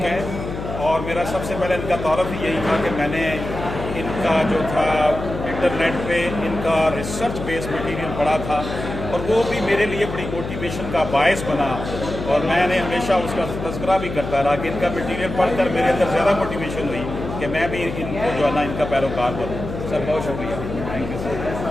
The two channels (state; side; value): noise; left; hum, 7 dB below the sound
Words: ہے، اور میرا سب سے پہلے ان کا تعارف ہی یہی تھا کہ میں نے ان کا جو تھا انٹرنیٹ پہ ان کا ریسرچ بیس مٹیریل پڑھا تھا، اور وہ بھی میرے لیے بڑی موٹیویشن کا باعث بنا، اور میں نے ہمیشہ اس کا تذکرہ بھی کرتا رہا کہ ان کا مٹیریل پڑھ کر میرے اندر زیادہ موٹیویشن ہوئی کہ میں بھی ان کو جو ہے نا ان کا پیروکار بنوں۔ سر بہت شکریہ، تھینک یو